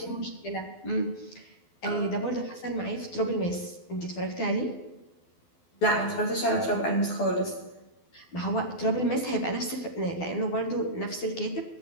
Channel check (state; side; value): late; right; 12 ms